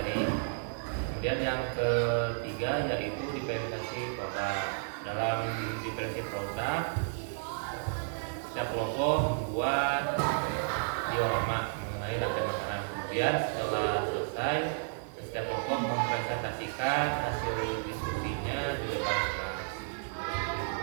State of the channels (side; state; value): left; silent; 56 dB below the other